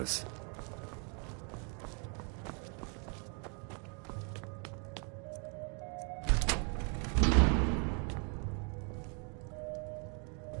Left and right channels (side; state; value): left; quieter; 37.7 dB